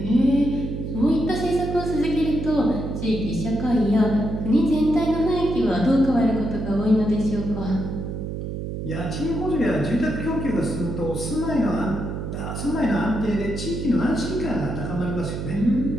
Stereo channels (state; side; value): noise; right; hum, 5 dB below the sound